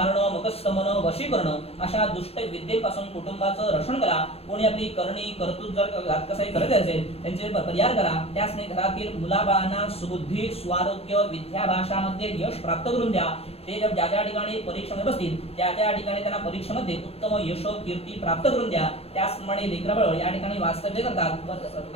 मुखस्तमन वशीकरण अशा दुष्ट विद्येपासून कुटुंबाचं रक्षण करा कोणी आपली करणी कर्तृत्व जर घातकसाई करत असेल त्यांचे परिहार करा त्यासने घरातील मुलाबाळांना सुबुद्धी स्वारोग्य विद्या भाषामध्ये यश प्राप्त करून द्या ते जर ज्या ज्या ठिकाणी परीक्षेमध्ये बसतील त्या त्या ठिकाणी त्यांना परीक्षेमध्ये उत्तम यश कीर्ती प्राप्त करून द्या त्याचप्रमाणे लेकरबाळ या ठिकाणी वास्तव्य करतात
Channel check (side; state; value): right; late; 0.29 ms